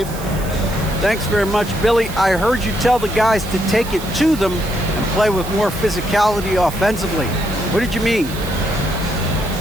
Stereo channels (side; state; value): right; noise; hiss, 15 dB below the sound